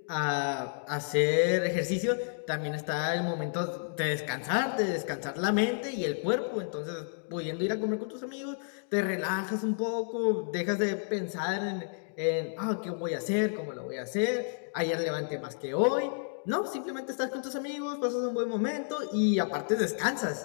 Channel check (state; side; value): silent; right; digital silence